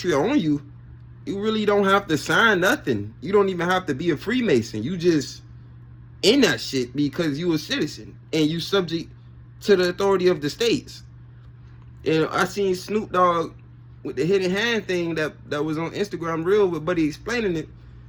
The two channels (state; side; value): identical; both; correlation 1.00